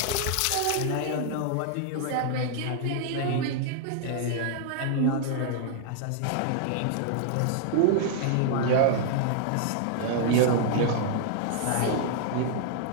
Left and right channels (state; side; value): different; both; correlation -0.01